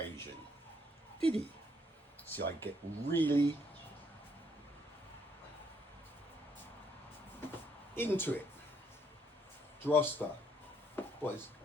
Did he? See, I get really into it. Droster.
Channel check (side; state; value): both; normal; correlation 0.70